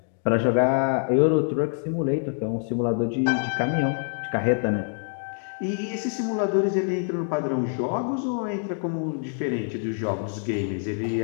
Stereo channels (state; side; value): silent; right; 59 dB below the other